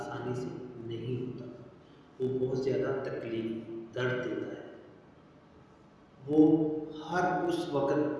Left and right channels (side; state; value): both; identical; correlation 1.00